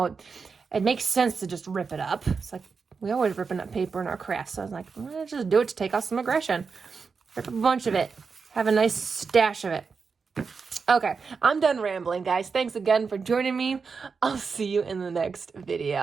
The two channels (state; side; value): quieter; left; 5.2 dB